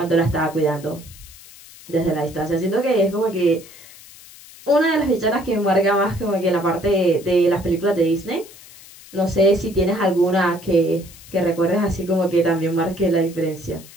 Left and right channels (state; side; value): noise; left; hiss, 20 dB below the sound